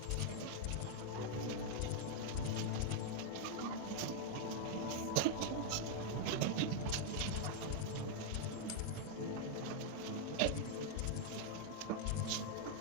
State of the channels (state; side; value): different; both; correlation 0.00